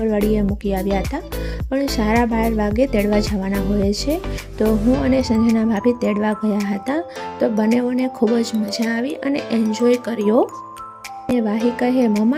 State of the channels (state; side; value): identical; both; correlation 1.00